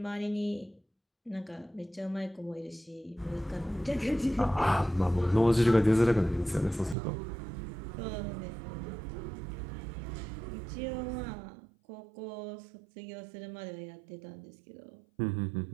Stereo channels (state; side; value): drops out; left; at 7.0 s